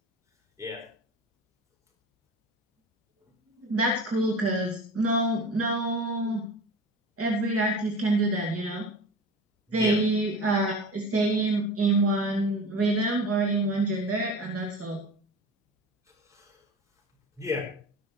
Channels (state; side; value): normal; both; correlation 0.34